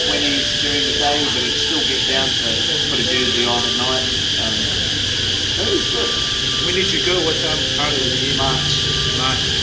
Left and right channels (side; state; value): both; identical; correlation 1.00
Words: 20s during the day, but it'd still get down to put a jersey on at night. It was good. When did you go? What part of the year? March. March.